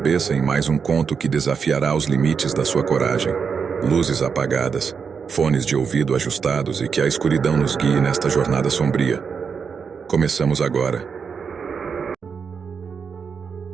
em mais um conto que desafiará os limites da sua coragem. Luzes apagadas, fones de ouvido ajustados e que a escuridão nos guie nesta jornada sombria. Começamos agora.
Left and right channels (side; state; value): left; quieter; 6.1 dB